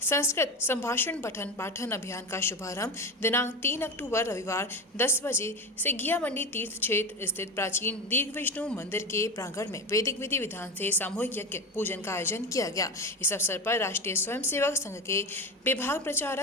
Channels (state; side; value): normal; both; correlation 0.22